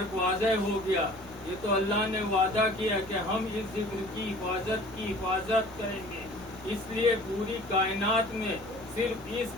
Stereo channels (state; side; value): normal; both; correlation 0.48